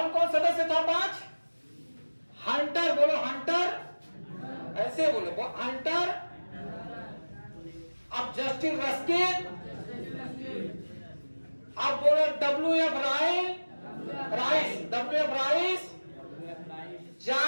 कौन सदस्य था 5, हंटर, बोलो हंटर, ऐसे बोलो हंटर। अब जस्टिस रस्किन, अब बोलो WF राइस,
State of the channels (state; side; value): inverted; both; correlation -1.00